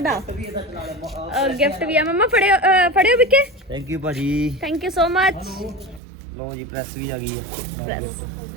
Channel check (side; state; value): left; drops out; at 6.0 s